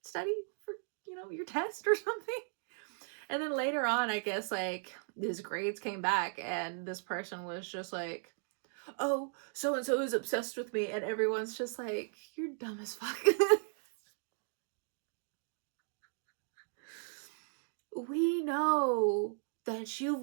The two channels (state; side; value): silent; left; 53 dB below the other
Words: study for, your test or something? And then later on, I guess like his grades came back, and this person was just like, oh, so-and-so is obsessed with me, and everyone's just like, you're dumb as fuck. We know that you